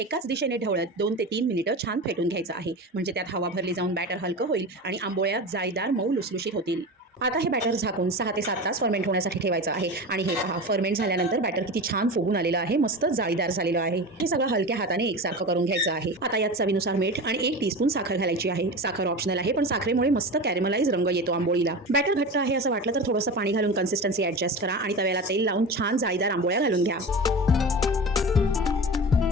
दिशेने ढवळत 2 ते 3 मिनिटं छान फेटून घ्यायचं आहे, म्हणजे त्यात हवा भरली जाऊन बॅटर हलकं होईल आणि आंबोळ्या जाळीदार मऊ लुसलुशीत होतील। आता हे बॅटर झाकून 6 ते 7 तास फर्मेंट होण्यासाठी ठेवायचं आहे। आणि हे पहा, फर्मेंट झाल्यानंतर बॅटर किती छान फुगून आलेलं आहे, मस्त जाळीदार झालेलं आहे। हे सगळं हलक्या हाताने एकसारखं करून घ्यायचं आहे। आता यात चवीनुसार मीठ आणि 1 टीस्पून साखर घालायची आहे। साखर ऑप्शनल आहे, पण साखरेमुळे मस्त कॅरेमलाइज रंग येतो आंबोळीला। बॅटर घट्ट आहे असं वाटलं तर थोडंसं पाणी घालून कन्सिस्टन्सी ॲडजस्ट करा आणि तव्याला तेल लावून छान जाळीदार आंबोळ्या घालून घ्या।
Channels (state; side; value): normal; both; correlation 0.28